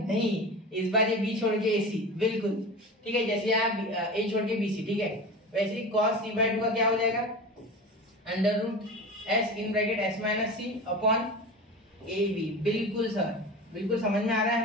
इस बार ये b छोड़ के ac, बिल्कुल, ठीक है, जैसे यहाँ a छोड़ के bc, ठीक है, वैसे ही cos c/2 का क्या हो जाएगा, √s in bracket s - c upon ab, बिल्कुल सर, बिल्कुल समझ में आ रहा है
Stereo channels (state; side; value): normal; both; correlation 0.31